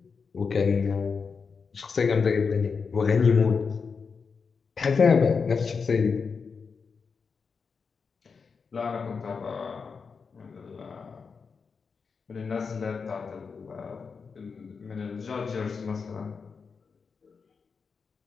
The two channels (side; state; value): right; quieter; 5.4 dB